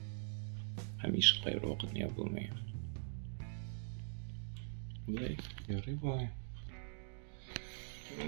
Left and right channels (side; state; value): left; silent; digital silence